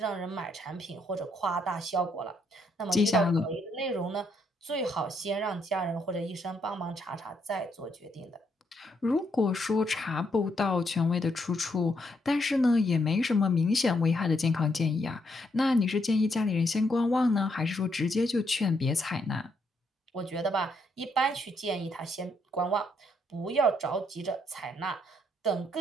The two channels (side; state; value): both; normal; correlation 0.75